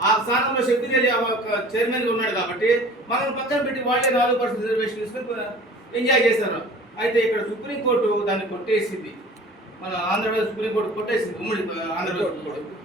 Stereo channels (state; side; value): normal; both; correlation 0.45